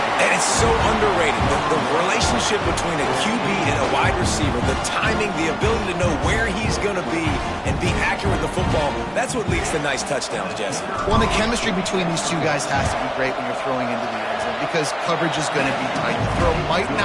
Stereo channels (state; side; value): identical; both; correlation 1.00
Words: And it's so underrated. The relationship between a QB and a wide receiver, the timing, the ability to know where he's going to be and be accurate with the football, that's what leads to nice touchdowns, Jesse. Well, the chemistry between these two guys has to be great when you're throwing into the end zone, because coverage is going to be tight. The throw might